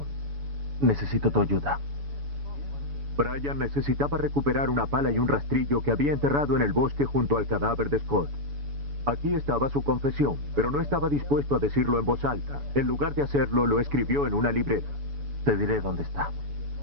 Necesito tu ayuda. Bryan necesitaba recuperar una pala y un rastrillo que había enterrado en el bosque junto al cadáver de Scott. Aquí estaba su confesión, pero no estaba dispuesto a decirlo en voz alta. En lugar de hacerlo, lo escribió en una libreta. Te diré dónde está.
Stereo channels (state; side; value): late; left; 7.0 ms